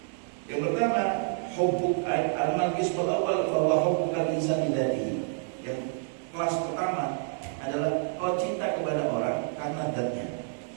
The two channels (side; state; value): left; silent; digital silence